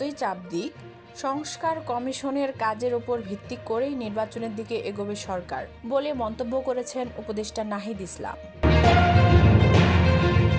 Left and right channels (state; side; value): identical; both; correlation 1.00